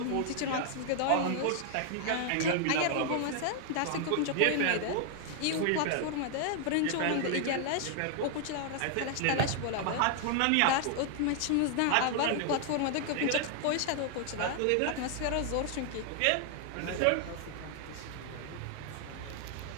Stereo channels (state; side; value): different; both; correlation 0.00